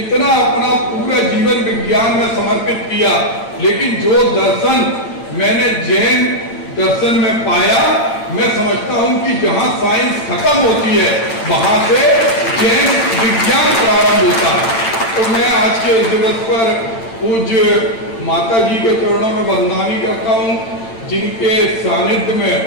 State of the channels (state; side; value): late; right; 8.9 ms